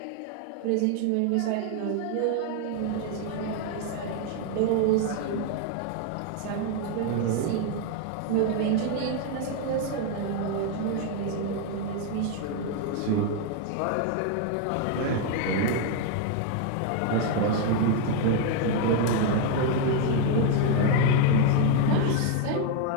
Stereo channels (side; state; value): both; different; correlation 0.01